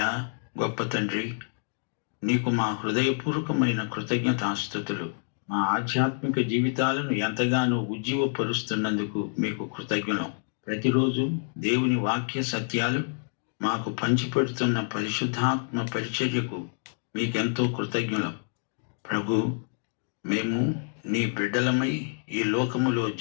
గొప్ప తండ్రి, నీకు మా హృదయపూర్వకమైన కృతజ్ఞతాస్తుతులు. మా ఆధ్యాత్మిక జీవితాలను ఎంతగానో ఉజ్జీవపరుస్తున్నందుకు మీకు కృతజ్ఞులం. ప్రతిరోజు దేవుని వాక్య సత్యాలు మాకు పంచిపెడుతున్న పరిశుద్ధాత్మ పరిచర్యకు మీకెంతో కృతజ్ఞులం. ప్రభు, మేము నీ బిడ్డలమై ఈ లోకములో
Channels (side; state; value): right; silent; digital silence